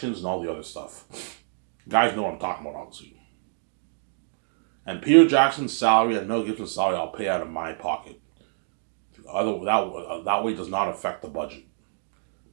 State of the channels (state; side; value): silent; left; digital silence